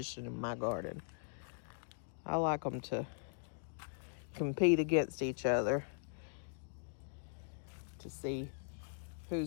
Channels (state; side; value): silent; right; digital silence